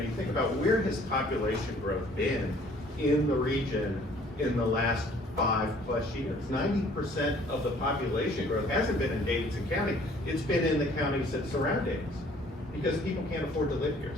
think about where has population growth been in the region in the last 5+ years. 90% of the population growth hasn't been in Davidson County, it's been in the counties that surround Davidson, because people can't afford to live here.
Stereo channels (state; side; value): normal; both; correlation 0.56